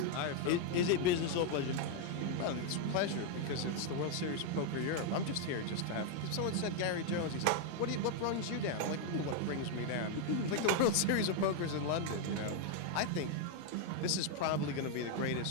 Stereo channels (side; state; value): both; different; correlation 0.00